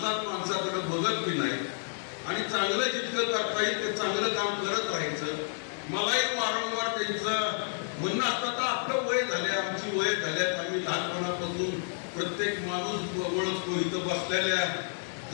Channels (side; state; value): right; silent; digital silence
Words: माणसाकडे बघत बी नाही आणि चांगलं जितकं करता येईल ते चांगलं काम करत राहायचं. मलाही वारंवार त्यांचं म्हणणं असतं तर आपलं वय झालंय, आमची वय झाल्यात, आम्ही लहानपणापासून प्रत्येक माणूस ओळखतो. इथं बसलेल्या